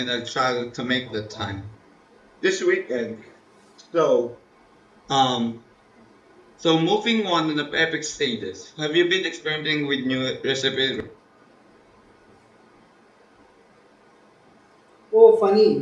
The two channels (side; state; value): both; identical; correlation 1.00